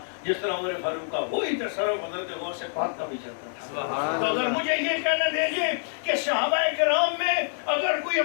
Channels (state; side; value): silent; right; digital silence